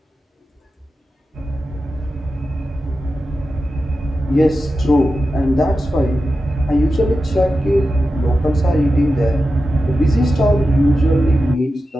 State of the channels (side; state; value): both; normal; correlation 0.92